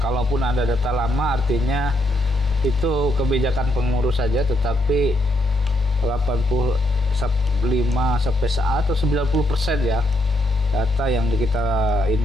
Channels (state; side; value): normal; both; correlation 0.77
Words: ada data lama artinya itu kebijakan pengurus saja, tetapi 85 sampai saat atau 90% ya data yang kita